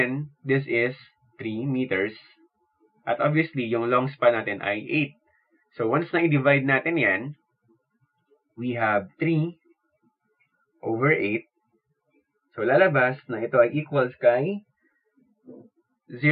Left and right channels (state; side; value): identical; both; correlation 1.00